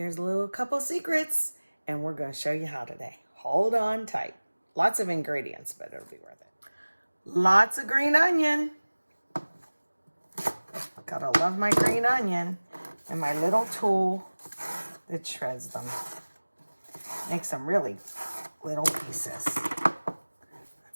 a little couple secrets, and we're going to show you how today. Hold on tight. Lots of ingredients, but it'll be worth it. Lots of green onion. Gotta love my green onion. And my little tool that shreds them. Makes them really little pieces.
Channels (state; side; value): inverted; both; correlation -1.00